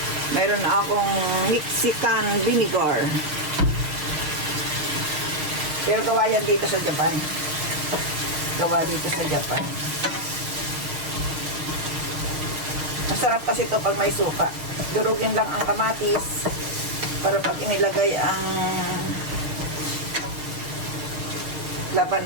Meron na akong Mexican vinegar. Pero gawa yan dito sa Japan. Gawa dito sa Japan. Masarap kasi ito pag may suka. Durugin lang ang kamatis para pag inilagay ang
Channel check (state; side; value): late; left; 6.6 ms